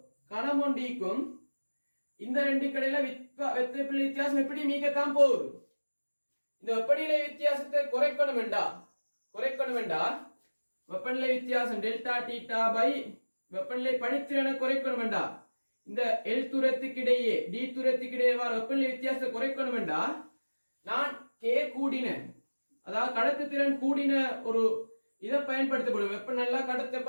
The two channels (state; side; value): inverted; both; correlation -1.00